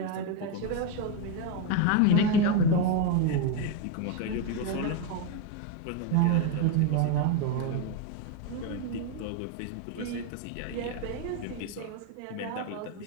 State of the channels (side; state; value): both; different; correlation 0.02